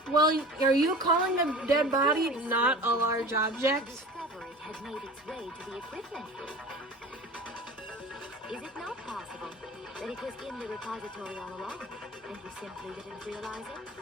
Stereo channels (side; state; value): both; normal; correlation 0.37